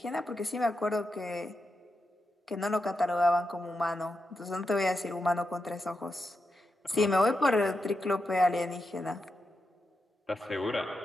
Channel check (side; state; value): both; normal; correlation 0.87